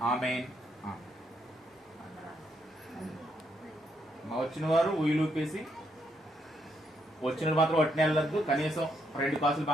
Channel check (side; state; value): both; normal; correlation 0.76